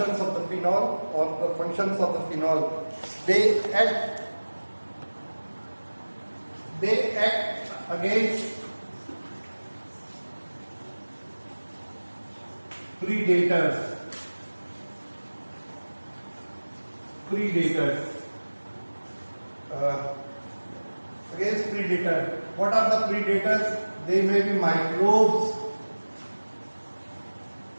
of the phenol or the functions of the phenol. They act against predators. Against predators. What are the predators? They may be microbes,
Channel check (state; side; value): inverted; both; correlation -1.00